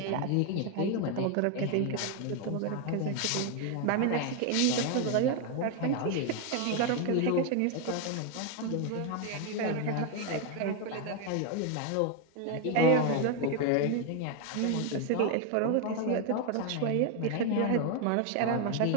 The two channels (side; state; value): both; different; correlation 0.01